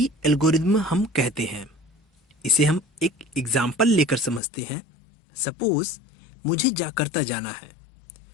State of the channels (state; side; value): drops out; right; at 4.4 s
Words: एल्गोरिदम हम कहते हैं। इसे हम एक एग्जाम्पल लेकर समझते हैं। सपोज मुझे जाकर्ता जाना है,